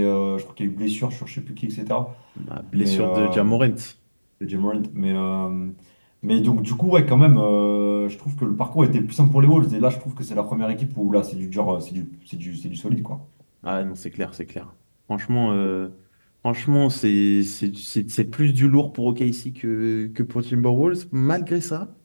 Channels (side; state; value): both; inverted; correlation -1.00